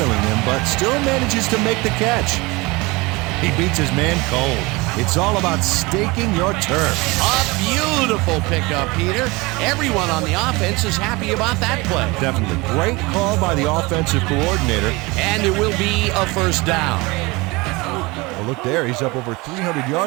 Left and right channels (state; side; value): quieter; left; 24.0 dB